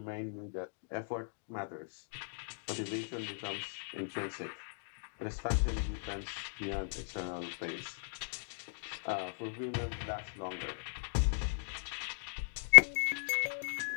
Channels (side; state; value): right; silent; digital silence